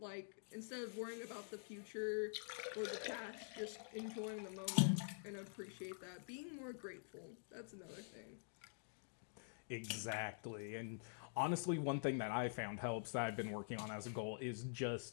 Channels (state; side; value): silent; right; digital silence